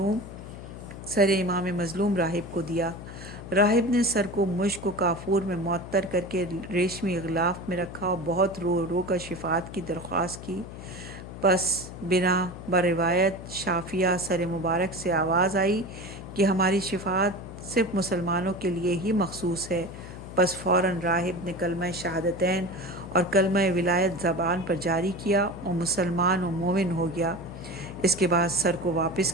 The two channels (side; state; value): left; noise; hum, 12 dB below the sound